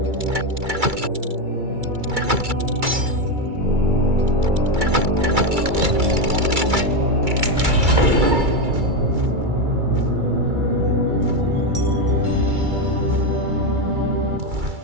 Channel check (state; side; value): late; left; 2.3 ms